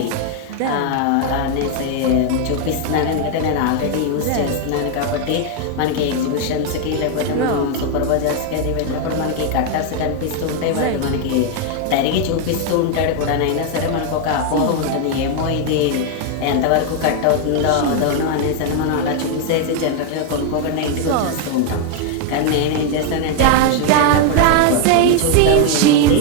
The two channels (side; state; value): both; different; correlation 0.00